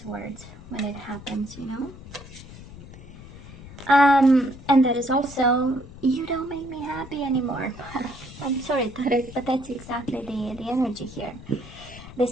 words when it happens, you know? And that is also, you don't make me happy anymore. I'm sorry, Taurus, but that's exactly the energy here. The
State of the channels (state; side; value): noise; left; rumble, 16 dB below the sound